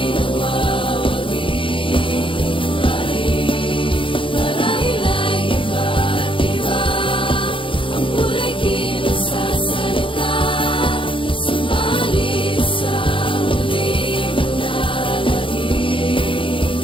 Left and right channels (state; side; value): late; right; 0.25 ms